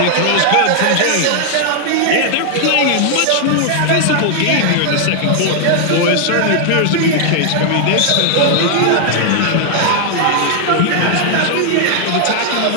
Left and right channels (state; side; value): different; both; correlation 0.00